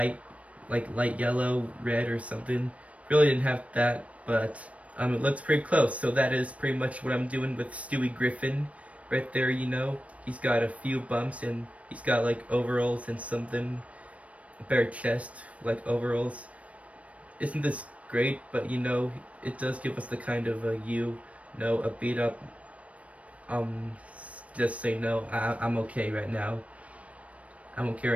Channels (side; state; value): left; late; 0.065 ms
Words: yellow, red or something. Really didn't have that, but it looks pretty close. So that is pretty much what I'm doing with Stewie Griffin. Right there, you know. He's got a few bumps and he's got like overalls and something. A bare chest, like overalls. Isn't this great? But you know, it does give us the kind of a beat up, just say no, I'm okay right now. I'm okay